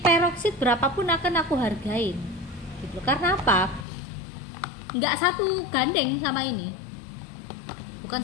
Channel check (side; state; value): right; drops out; at 3.9 s